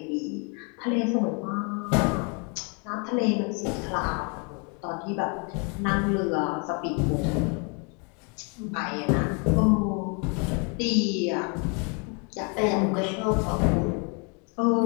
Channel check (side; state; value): right; quieter; 34.6 dB